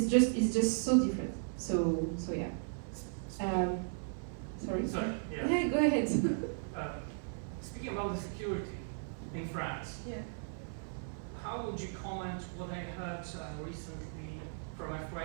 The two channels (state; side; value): silent; left; 54 dB below the other